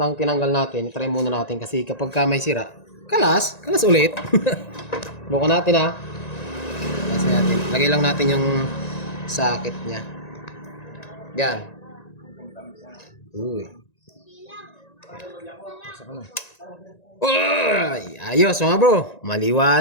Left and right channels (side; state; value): right; late; 1.9 ms